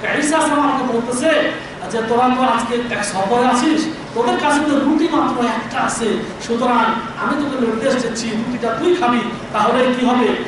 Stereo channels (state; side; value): identical; both; correlation 1.00